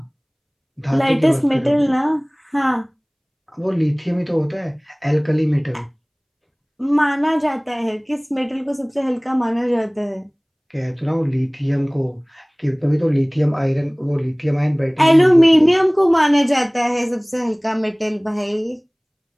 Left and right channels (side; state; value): both; identical; correlation 1.00